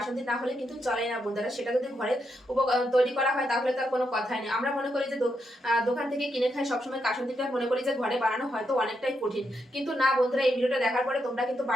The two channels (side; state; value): both; normal; correlation 0.82